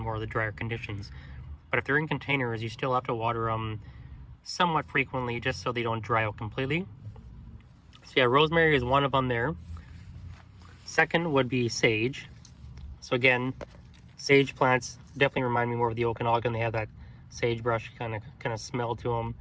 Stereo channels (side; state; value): both; identical; correlation 1.00